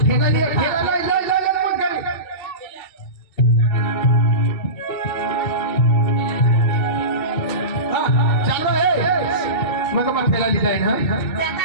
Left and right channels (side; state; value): right; late; 2.7 ms